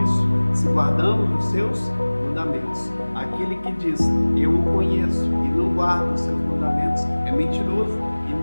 se guardamos os seus mandamentos. Aquele que diz, eu o conheço, e não guarda os seus mandamentos, é mentiroso, e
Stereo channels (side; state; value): both; inverted; correlation -1.00